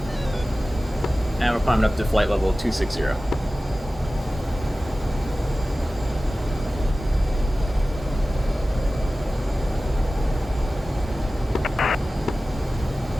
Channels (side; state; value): both; normal; correlation 0.96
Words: And we're climbing up to flight level 260.